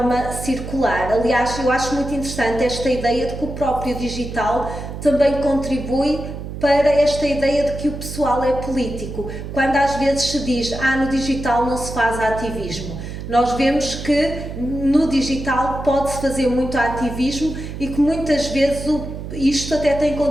circular. Aliás, eu acho muito interessante esta ideia de que o próprio digital também contribui para esta ideia de que o pessoal é político. Quando às vezes se diz, no digital não se faz ativismo. Nós vemos que no digital pode-se fazer muito ativismo e que muitas vezes isto até tem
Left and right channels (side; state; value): right; noise; hum, 8 dB below the sound